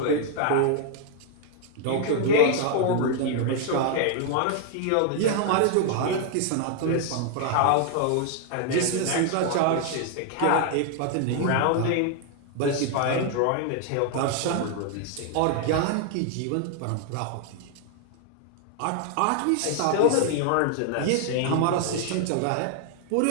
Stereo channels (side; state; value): both; different; correlation 0.00